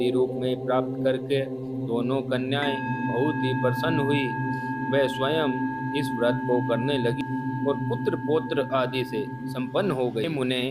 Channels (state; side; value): identical; both; correlation 1.00